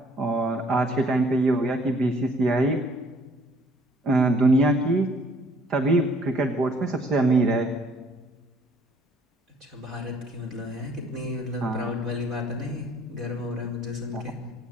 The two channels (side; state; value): both; normal; correlation 0.60